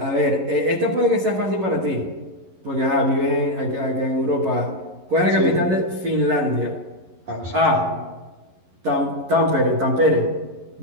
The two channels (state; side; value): late; left; 11 ms